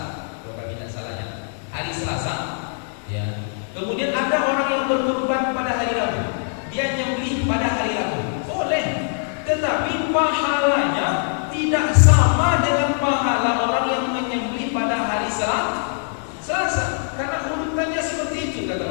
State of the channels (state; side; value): silent; right; digital silence